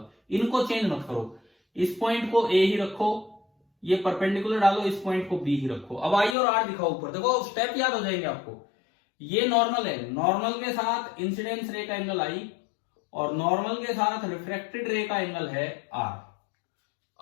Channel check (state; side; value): drops out; right; at 6.4 s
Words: इनको चेंज मत करो, इस पॉइंट को A ही रखो, ये परपेंडिकुलर डालो, इस पॉइंट को B ही रखो। अब I और R दिखाओ ऊपर, देखो स्टेप याद हो जाएंगे आपको। ये नॉर्मल है, नॉर्मल के साथ इंसिडेंस रे का एंगल I और नॉर्मल के साथ रिफ्रैक्टेड रे का एंगल है R।